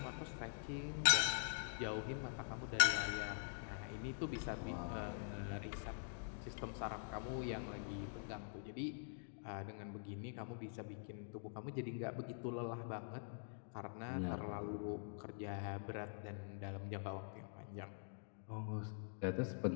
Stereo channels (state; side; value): silent; right; digital silence